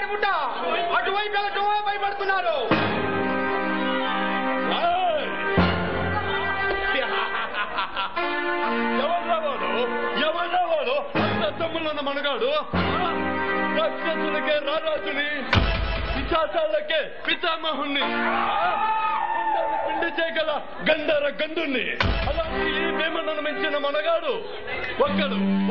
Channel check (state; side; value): identical; both; correlation 1.00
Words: ముట్ట అటువైపు వెళ్ళటం భయపడుతున్నారు. ఎవరా వాడు? అంత తమ్ముళ్ళన్న మనగాడు రాక్షసులకే రారాజుని, పిశాచాలకే పితామహుణ్ణి, పిండి చేయగల గంధర గంధుణ్ణి. అలాంటి ఈ భీమన్నను మించిన మనగాడు